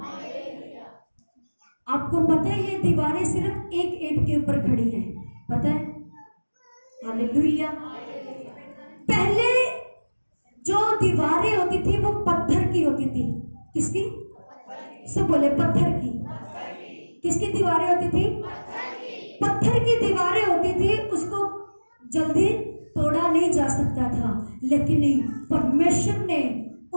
आपको पता है ये दीवारें सिर्फ एक ईंट के ऊपर खड़ी हैं, पता है? हालेलुया। पहले जो दीवारें होती थी वो पत्थर की होती थी। किसकी? सब बोले पत्थर की। किसकी दीवारें होती थी? पत्थर की दीवारें होती थी। उसको जल्दी तोड़ा नहीं जा सकता था, लेकिन परमेश्वर ने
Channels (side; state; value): both; inverted; correlation -1.00